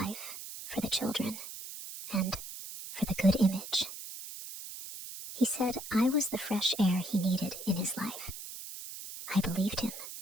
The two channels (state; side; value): noise; right; hiss, 10 dB below the sound